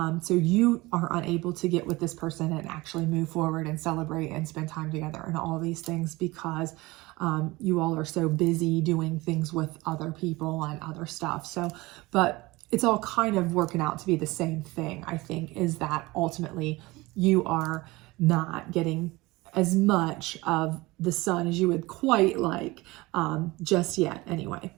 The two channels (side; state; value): left; quieter; 21.4 dB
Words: So you are unable to get with this person and actually move forward and celebrate and spend time together and all these things, because you all are so busy doing things with other people and other stuff. So, but it's all kind of working out to be the same thing, I think, is that ultimately you are not getting as much of the sun as you would quite like, just yet anyway.